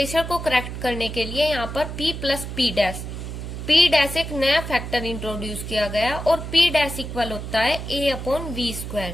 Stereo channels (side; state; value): right; noise; hum, 7 dB below the sound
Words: को करेक्ट करने के लिए यहाँ पर P प्लस P डैश एक नया फैक्टर इंट्रोड्यूस किया गया और P डैश इक्वल होता है A अपॉन वी स्क्वायर